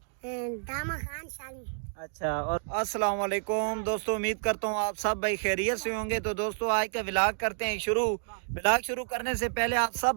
दामा खान शाली। अच्छा। और अस्सलाम वालेकुम दोस्तों, उम्मीद करता हूँ आप सब भाई खैरियत से होंगे। तो दोस्तों आज का व्लॉग करते हैं शुरू। व्लॉग शुरू करने से पहले आप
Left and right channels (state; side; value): silent; left; digital silence